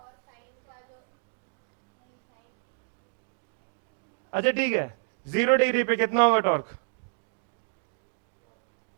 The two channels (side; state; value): left; silent; digital silence